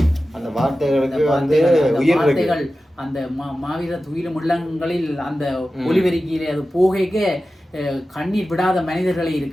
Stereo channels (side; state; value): both; normal; correlation 0.94